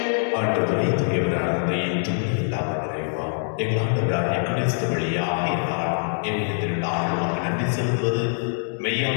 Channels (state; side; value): silent; right; 63 dB below the other